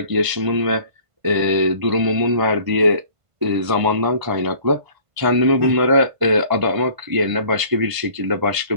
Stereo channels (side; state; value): left; late; 1.5 ms